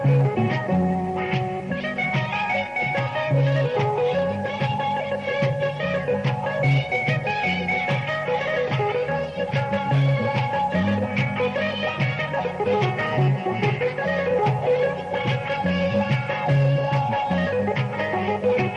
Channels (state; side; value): identical; both; correlation 1.00